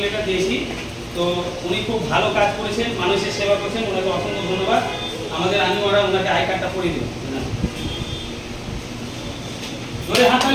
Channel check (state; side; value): identical; both; correlation 1.00